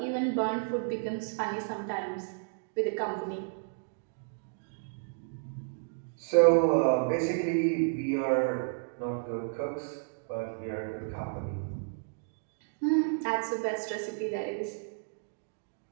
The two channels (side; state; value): left; silent; digital silence